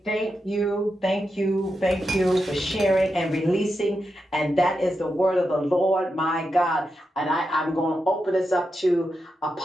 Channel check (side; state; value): both; normal; correlation 0.87